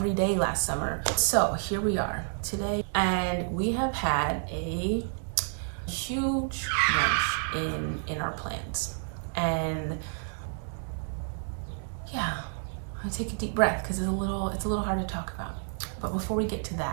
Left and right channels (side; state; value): left; silent; digital silence